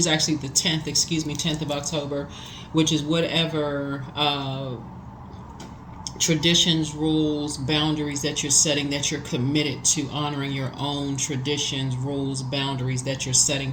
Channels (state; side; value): identical; both; correlation 1.00